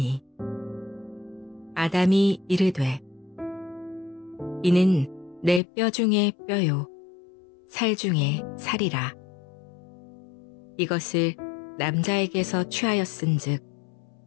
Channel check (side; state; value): right; drops out; at 5.6 s